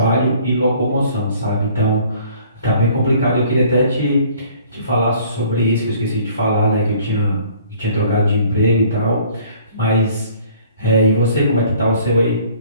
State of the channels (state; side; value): inverted; both; correlation -0.55